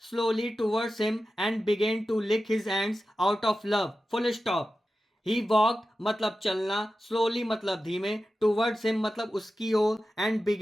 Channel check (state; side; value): normal; both; correlation 0.93